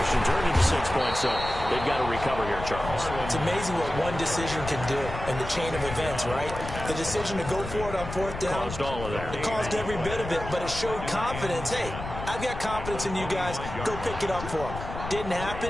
turned into 6 points, so they've got to recover here, Charles. It's amazing what one decision can do in the chain of events, right? The decision to go for it on 4th down. Caused all of that. It caused every bit of it, but it showed confidence. Hey, I've got confidence in you guys. Go pick it up for them. Didn't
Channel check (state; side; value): noise; left; rumble, 9 dB below the sound